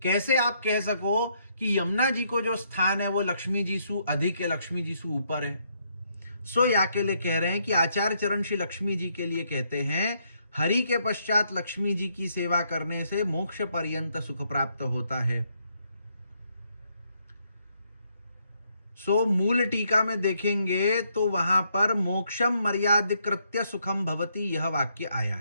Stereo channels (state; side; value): inverted; both; correlation -0.74